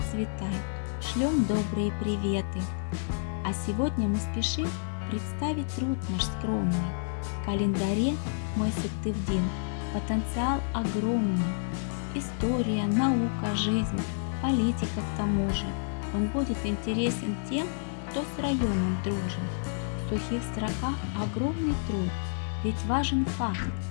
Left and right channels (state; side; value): silent; right; digital silence